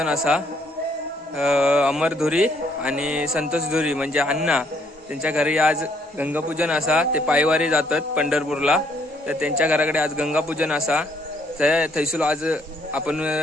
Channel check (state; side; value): normal; both; correlation 0.67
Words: असा अमर धुरी आणि संतोष धुरी म्हणजे अण्णा त्यांच्या घरी आज गंगापूजन असा. ते पायवारी जातात पंढरपूरला, तर त्यांच्या घराकडे आज गंगापूजन असा. थैसूल आज आपण